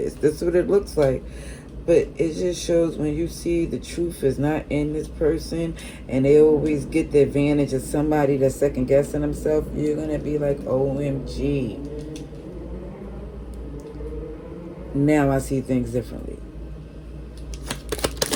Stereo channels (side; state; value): both; identical; correlation 1.00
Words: That's what it looks like. But it just shows when you see the truth is not in this person, and they always get the advantage of somebody that's second guessing themselves, you're going to be like, OMG. Now I see things differently.